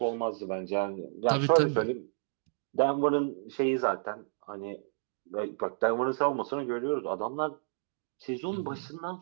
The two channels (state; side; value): silent; left; digital silence